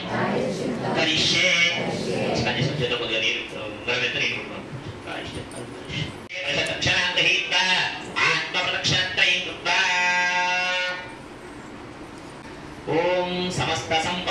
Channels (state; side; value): identical; both; correlation 1.00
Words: కరిష్యే. కొద్దిగా నీరు ఓం సమస్త